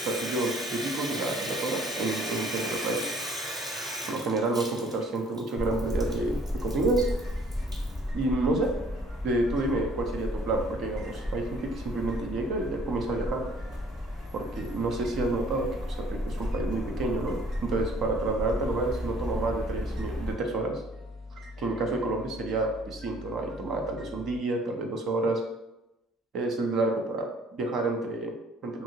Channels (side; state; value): both; normal; correlation 0.57